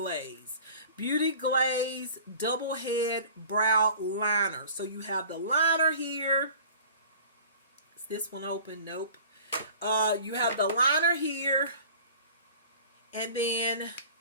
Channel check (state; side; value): inverted; both; correlation -0.45